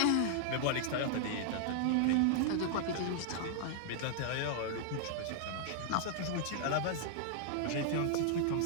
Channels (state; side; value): different; both; correlation -0.01